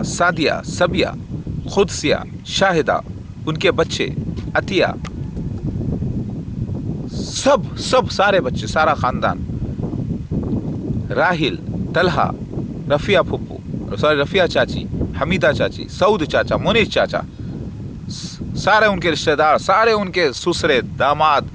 सादिया, सबिया, खुदसिया, शाहिदा, उनके बच्चे, अतिया, सब सारे बच्चे, सारा ख़ानदान, राहिल, तलहा, रफ़िया फुप्पू, सॉरी रफ़िया चाची, हमीदा चाची, सऊद चाचा, मुनीर चाचा, سارے ان کے رشتہ دار، سارے ان کے سسرے داماد،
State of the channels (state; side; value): identical; both; correlation 1.00